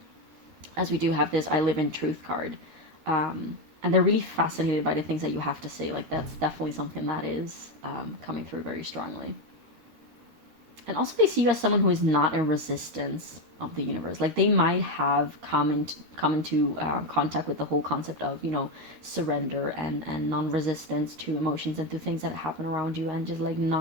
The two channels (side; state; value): left; late; 13 ms